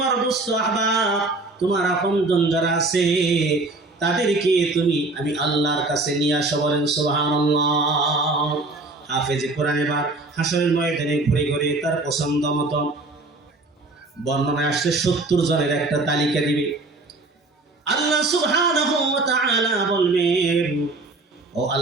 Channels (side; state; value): left; quieter; 3.1 dB